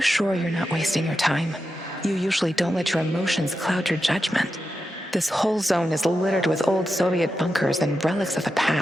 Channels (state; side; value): normal; both; correlation 0.89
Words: you're not wasting your time? You usually don't let your emotions cloud your judgment. This whole zone is littered with old Soviet bunkers and relics of the